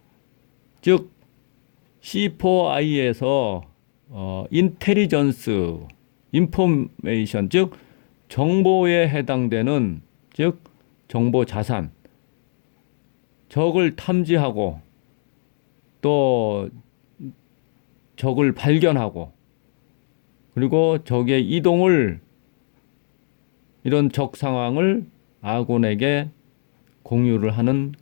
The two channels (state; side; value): silent; right; digital silence